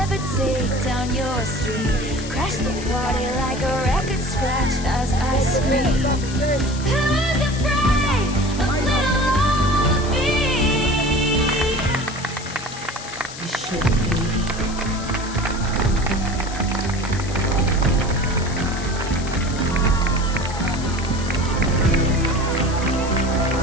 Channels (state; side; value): noise; left; hiss, 13 dB below the sound